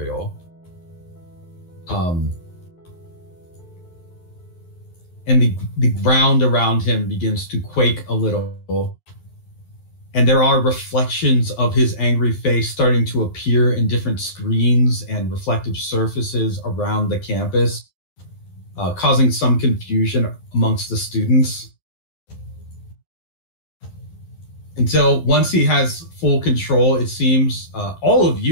And the ground around him begins to quake a little. And there are reflections of his angry face starting to appear in different screens and reflective surfaces around the campus, causing some confusion amongst the students. Until once he has full control, it seems all of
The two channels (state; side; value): late; right; 11 ms